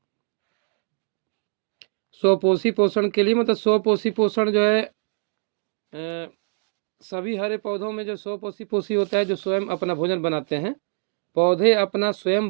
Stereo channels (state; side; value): silent; left; digital silence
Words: स्वपोषी पोषण के लिए मतलब स्वपोषी पोषण जो है, सभी हरे पौधों में जो स्वपोषी पोषी होता है, जो स्वयं अपना भोजन बनाते हैं, पौधे अपना स्वयं